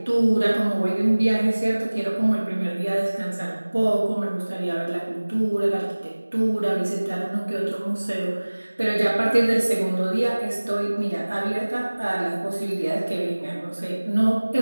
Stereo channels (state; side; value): inverted; both; correlation -1.00